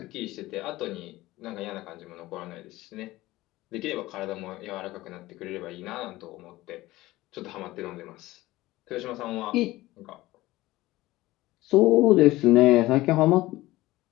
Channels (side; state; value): right; quieter; 18.0 dB